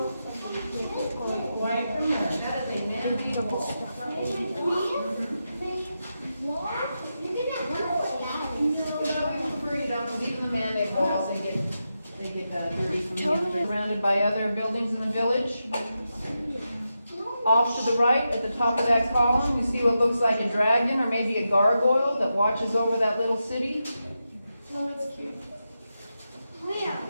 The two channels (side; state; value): both; inverted; correlation -0.88